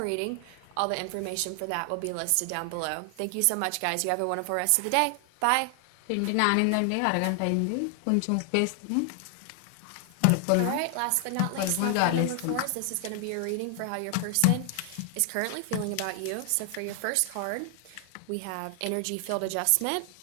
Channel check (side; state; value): both; different; correlation 0.00